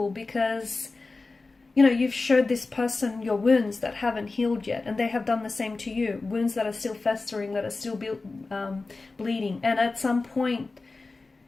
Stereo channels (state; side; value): quieter; right; 3.6 dB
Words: because, you know, you've showed this person your wounds that haven't healed yet, and they have done the same to you. Wounds that are still festering, that are still bleeding. And at some point,